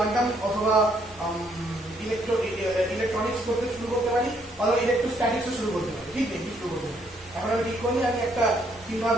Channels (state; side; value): normal; both; correlation 0.70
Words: অথবা ইলেকট্রনিক্স করতে শুরু করতে পারি, অথবা ইলেকট্রোস্ট্যাটিক্সও শুরু করতে পারি, ঠিক নেই কি শুরু করতে পারি। এখন আমি ঠিক করিনি, আমি একটা চিন্তা